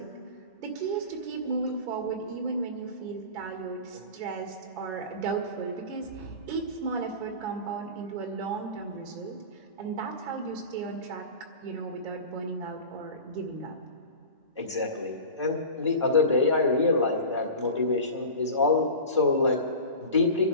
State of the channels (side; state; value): both; inverted; correlation -0.33